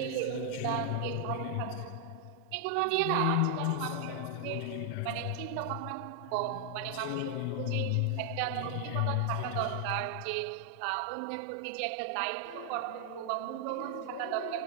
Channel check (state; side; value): different; both; correlation 0.00